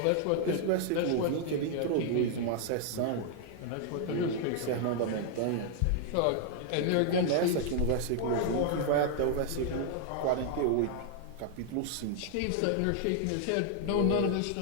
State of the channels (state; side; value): different; both; correlation 0.00